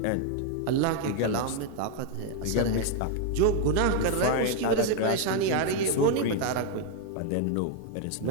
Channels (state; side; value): different; both; correlation 0.00